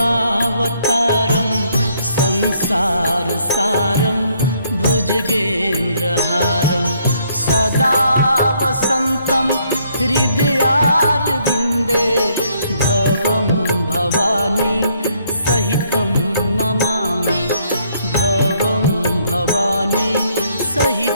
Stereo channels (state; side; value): inverted; both; correlation -0.69